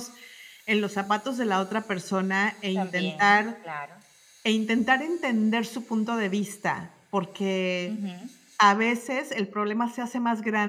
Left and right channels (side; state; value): both; identical; correlation 1.00